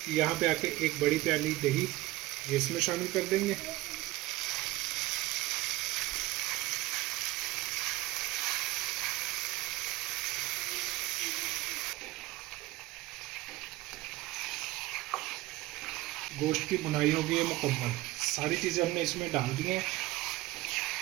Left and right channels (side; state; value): left; quieter; 18.5 dB